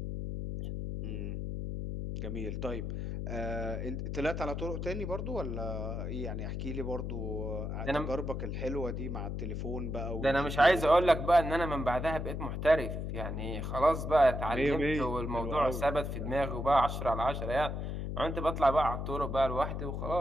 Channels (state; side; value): noise; left; hum, 4 dB below the sound